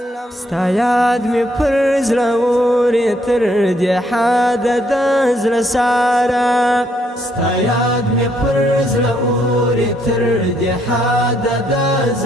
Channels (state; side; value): normal; both; correlation 0.71